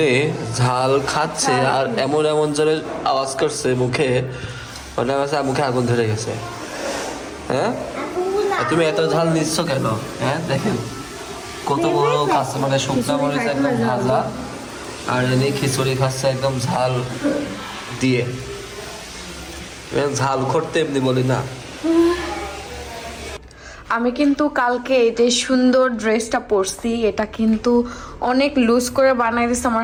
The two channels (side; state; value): both; identical; correlation 1.00